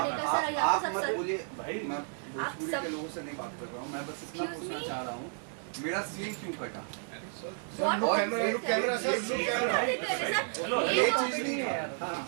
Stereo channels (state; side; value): silent; left; 56 dB below the other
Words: का सर। यहाँ पे सब बोलिए भाई, मैं भोजपुरी के लोगों से नहीं बात कर रहा हूँ, मैं बस इतना पूछना चाह रहा हूँ, मेरा सीन क्यों कटा? कैमरा सर, ये चीज नहीं है।